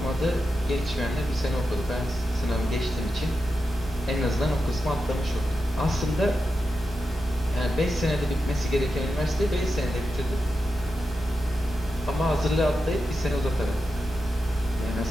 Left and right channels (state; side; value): normal; both; correlation 0.89